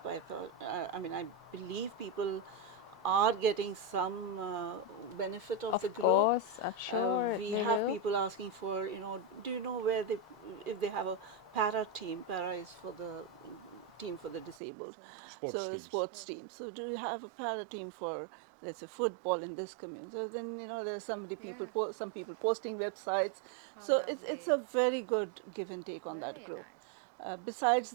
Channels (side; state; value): left; drops out; at 14.6 s